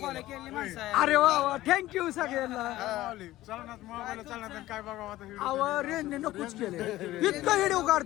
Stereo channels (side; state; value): right; quieter; 16.0 dB